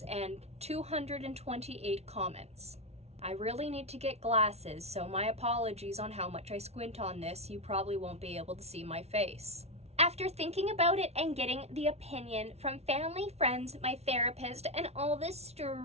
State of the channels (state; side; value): late; left; 0.31 ms